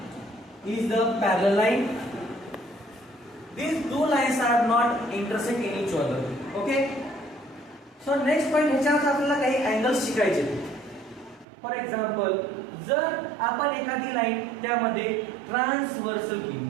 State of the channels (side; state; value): left; drops out; at 11.5 s